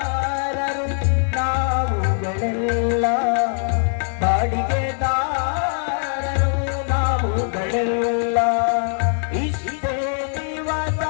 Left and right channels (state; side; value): silent; right; digital silence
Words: ನಾವುಗಳೆಲ್ಲ ಬಾಡಿಗೆದಾರರು ನಾವುಗಳೆಲ್ಲ ಇಷ್ಟೇ ದಿವಸ